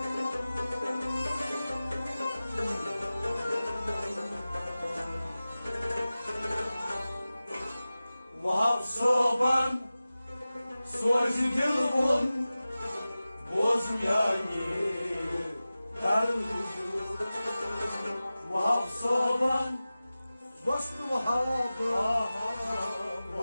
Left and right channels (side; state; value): both; inverted; correlation -0.96